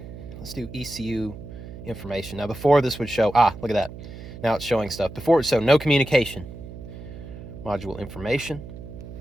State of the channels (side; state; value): right; noise; hum, 13 dB below the sound